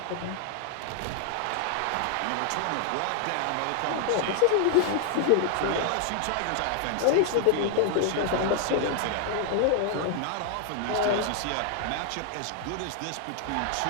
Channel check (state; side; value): different; both; correlation 0.00